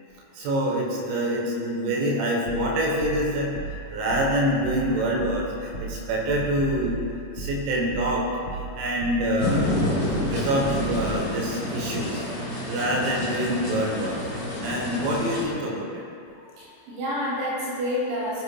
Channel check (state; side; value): late; left; 29 ms